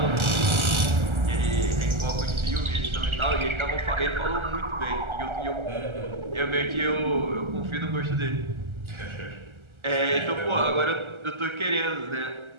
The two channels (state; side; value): late; left; 1.3 ms